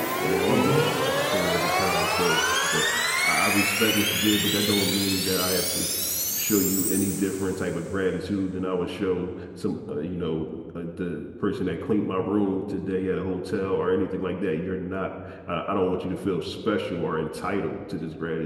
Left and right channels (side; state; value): both; identical; correlation 1.00